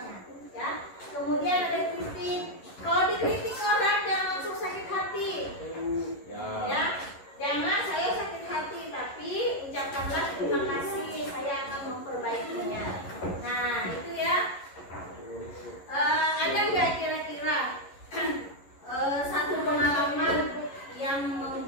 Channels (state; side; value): late; right; 11 ms